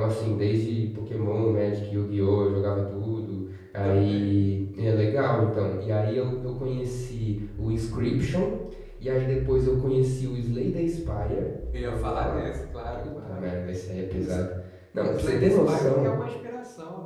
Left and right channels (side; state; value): both; identical; correlation 1.00